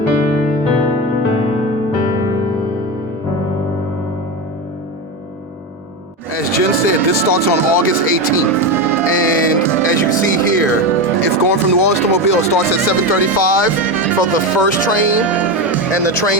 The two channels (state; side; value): normal; both; correlation 0.17